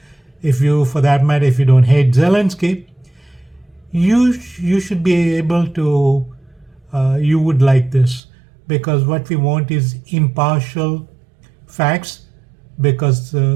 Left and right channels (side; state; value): left; drops out; at 8.2 s